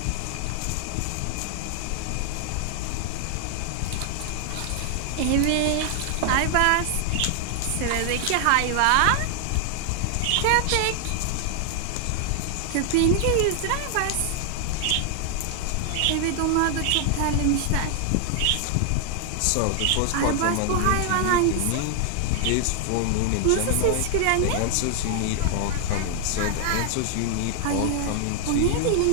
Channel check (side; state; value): both; different; correlation 0.00